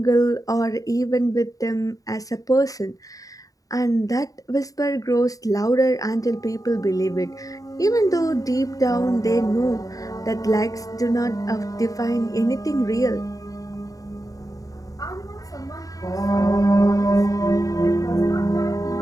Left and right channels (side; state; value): right; late; 0.17 ms